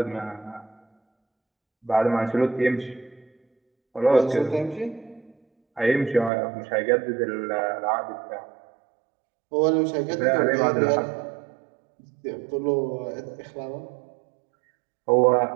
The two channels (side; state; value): left; drops out; at 6.3 s